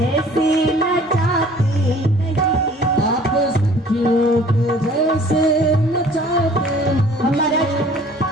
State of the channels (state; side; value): normal; both; correlation 0.51